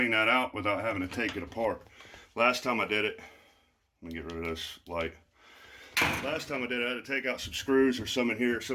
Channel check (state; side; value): identical; both; correlation 1.00